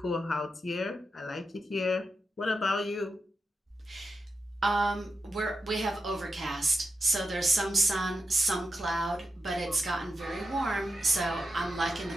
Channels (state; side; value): normal; both; correlation 0.87